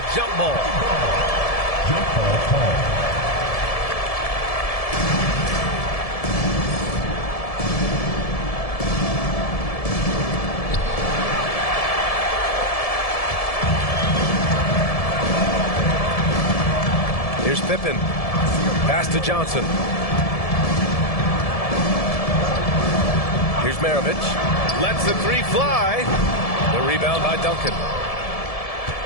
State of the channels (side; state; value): right; late; 1.7 ms